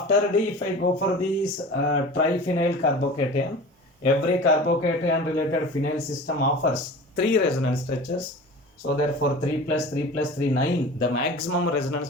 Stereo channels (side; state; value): both; normal; correlation 0.38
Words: D, if I go for this triphenyl carbocation, every carbocation related phenyl system offers 3 resonance structures. So therefore 3 plus 3 plus 3, 9. The maximum resonance